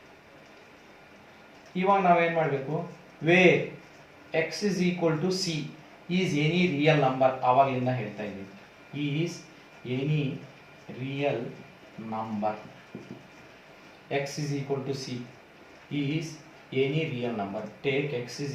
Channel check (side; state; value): both; identical; correlation 1.00